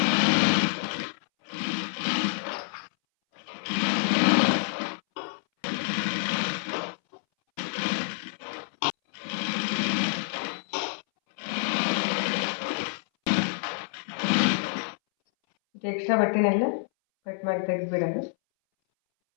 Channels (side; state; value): right; silent; 60 dB below the other